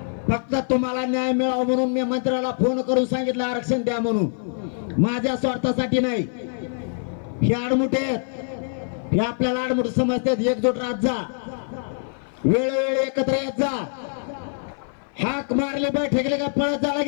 फक्त तुम्हाला न्याय मिळावा म्हणून मी मंत्र्याला फोन करून सांगितलं आरक्षण द्या म्हणून. माझ्या स्वार्थासाठी नाही, हे आडमुठे आहेत, हे आपल्याला आडमुठ समजतात. एकजूट राहत जा, वेळोवेळी एकत्र येत जा. हाक मारले बैठकले का पळत जा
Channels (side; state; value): right; silent; 58 dB below the other